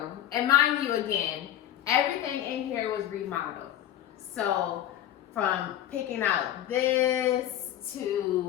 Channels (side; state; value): right; quieter; 11.8 dB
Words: And mind you, again, everything in here was remodeled. So from picking out this